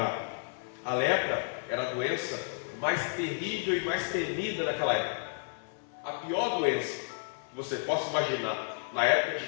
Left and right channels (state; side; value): silent; right; digital silence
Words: A lepra era a doença mais terrível e mais temida daquela época. A pior doença que você possa imaginar na época de